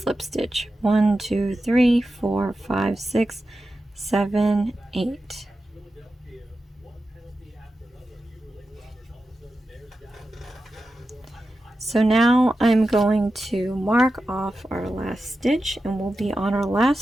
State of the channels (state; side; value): normal; both; correlation 0.92